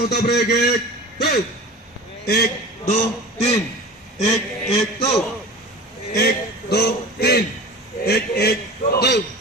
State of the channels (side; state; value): both; normal; correlation 0.36